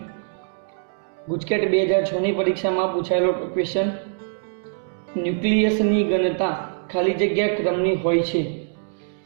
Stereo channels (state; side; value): silent; left; digital silence